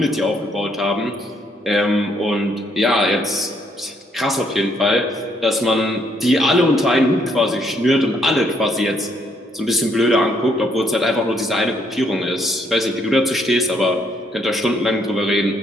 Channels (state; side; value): normal; both; correlation 0.71